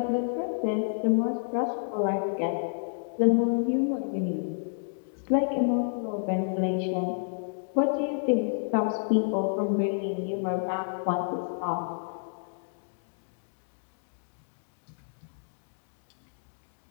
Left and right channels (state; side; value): silent; right; digital silence